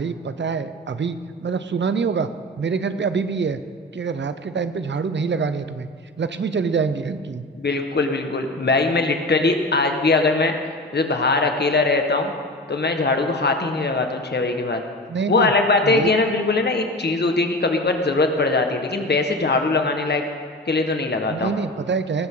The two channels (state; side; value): normal; both; correlation 0.31